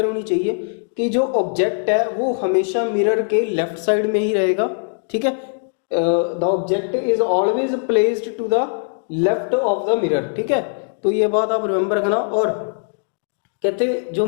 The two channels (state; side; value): silent; right; digital silence